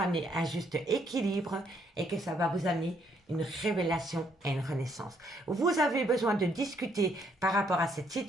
un juste équilibre et que ça va vous amener une révélation et une renaissance. Vous avez besoin de discuter par rapport à cette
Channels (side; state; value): both; normal; correlation 0.70